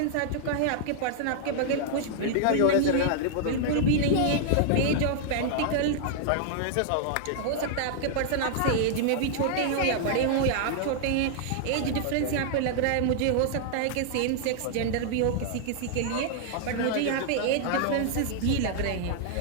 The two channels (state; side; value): different; both; correlation -0.01